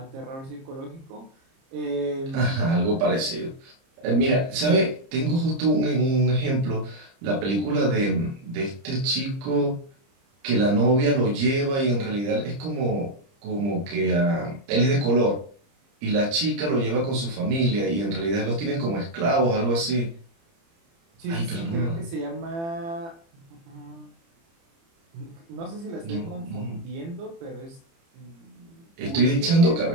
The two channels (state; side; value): late; left; 30 ms